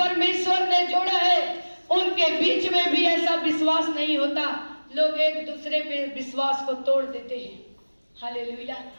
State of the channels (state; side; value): inverted; both; correlation -1.00